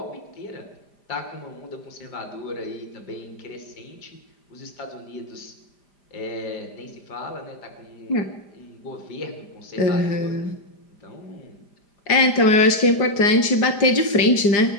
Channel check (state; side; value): late; right; 5.0 ms